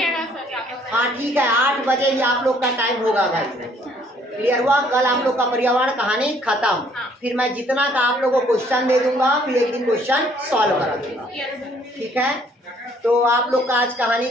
सर। हाँ ठीक है, 8 बजे ही आप लोग का टाइम होगा भाई। क्लियर हुआ? कल आप लोग का पर्यावरण कहानी खत्म। फिर मैं जितना का आप लोगों को क्वेश्चन दे दूंगा, फिर एक दिन क्वेश्चन सॉल्व करा दूंगा। ठीक है, तो आप लोग का आज कहानी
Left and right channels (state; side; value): normal; both; correlation 0.63